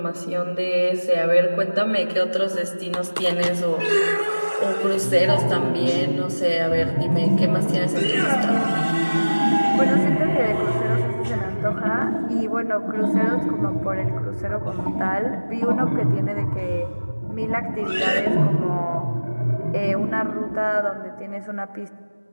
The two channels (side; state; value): both; inverted; correlation -1.00